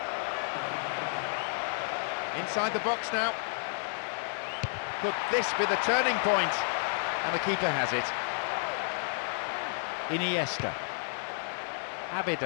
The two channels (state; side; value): silent; right; digital silence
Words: Inside the box now. Could this be the turning point? And the keeper has it. Iniesta.